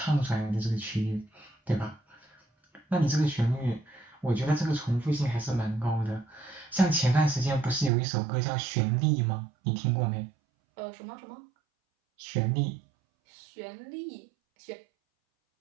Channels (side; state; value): left; drops out; at 7.9 s